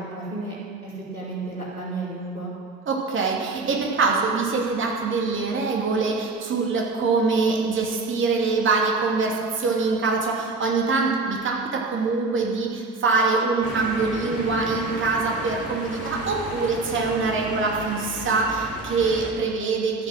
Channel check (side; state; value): left; quieter; 3.6 dB